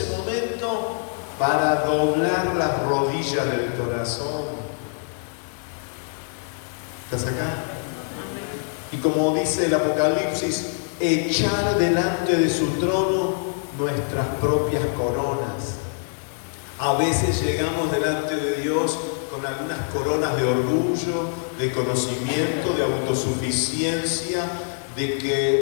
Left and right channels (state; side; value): silent; right; digital silence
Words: momento para doblar las rodillas del corazón. ¿Estás acá? Y como dice el Apocalipsis, echar delante de su trono nuestras propias coronas. A veces llegamos delante de Dios con algunas coronas de orgullo, de conocimiento, de autosuficiencia, de